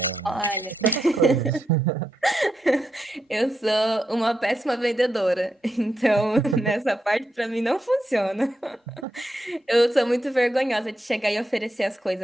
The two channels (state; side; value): normal; both; correlation 0.84